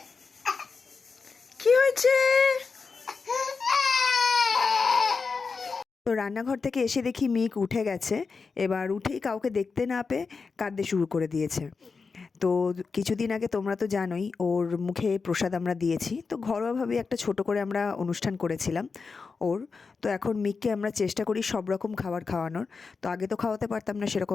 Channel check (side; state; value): right; quieter; 4.8 dB